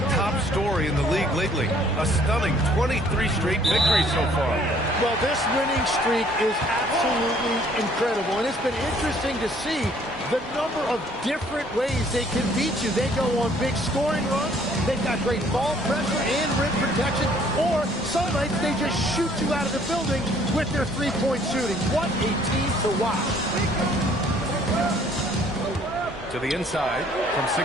top story in the league lately. A stunning 23 straight victories so far. Well, this winning streak is absolutely incredible. And it's been interesting to see the number of different ways they can beat you. They go on big scoring runs. They've got great ball pressure and rim protection. Or some nights they just shoot you out of the building with their three-point shooting. What a team to watch. To the inside from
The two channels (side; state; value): both; normal; correlation 0.60